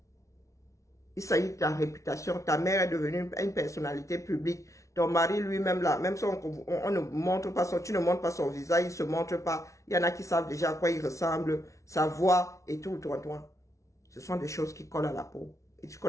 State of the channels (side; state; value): right; late; 0.15 ms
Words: Il s'agit de ta réputation. Ta mère est devenue une personnalité publique. Ton mari lui-même là, même si on ne montre pas tu ne montres pas son visage, il ne se montre pas. Il y en a qui savent déjà à quoi il ressemble, sa voix et tout, toi. Ce sont des choses qui collent à la peau. Et tu